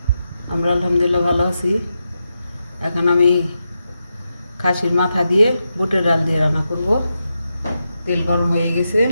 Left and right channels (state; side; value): inverted; both; correlation -0.87